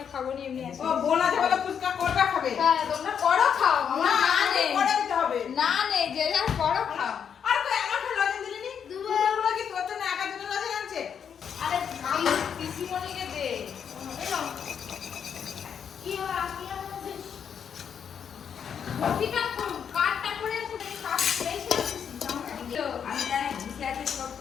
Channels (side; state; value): right; quieter; 7.7 dB